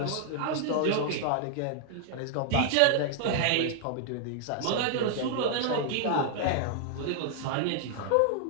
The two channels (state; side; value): different; both; correlation 0.00